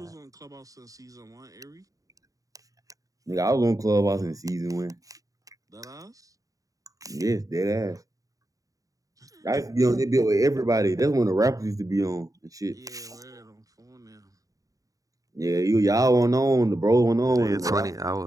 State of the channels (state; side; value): late; left; 0.17 ms